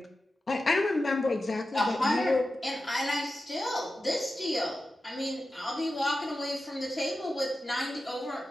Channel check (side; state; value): both; normal; correlation 0.92